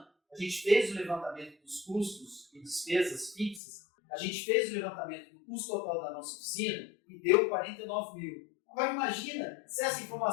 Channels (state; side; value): drops out; right; at 3.6 s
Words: a gente fez o levantamento dos custos e despesas fixas, a gente fez o levantamento do custo total da nossa oficina e deu 49.000. Agora imagina se essa